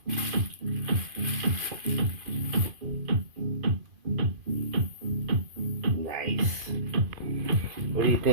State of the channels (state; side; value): late; left; 2.5 ms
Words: Nice. What do you